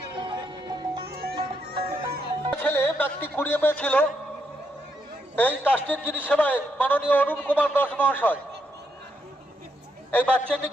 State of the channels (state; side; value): normal; both; correlation 0.79